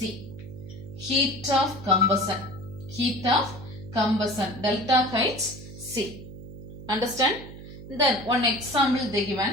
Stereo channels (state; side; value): noise; right; hum, 14 dB below the sound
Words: Heat of combustion. Heat of combustion. Delta Hc. Understand? Then one example they